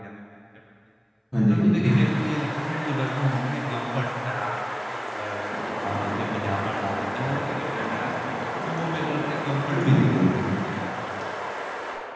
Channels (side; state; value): both; identical; correlation 1.00